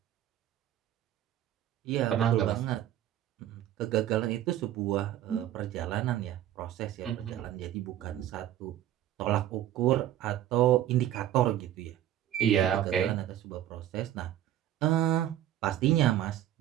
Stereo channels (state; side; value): quieter; left; 12.1 dB